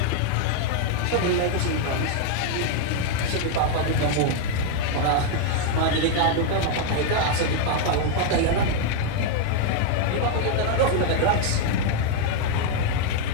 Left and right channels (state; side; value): different; both; correlation 0.00